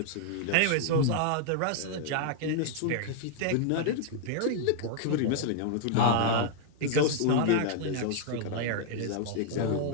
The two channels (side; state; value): both; different; correlation -0.01